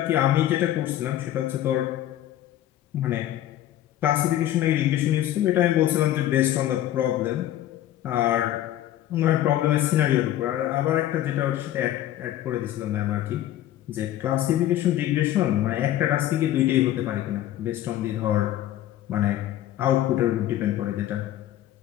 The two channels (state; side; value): quieter; right; 13.0 dB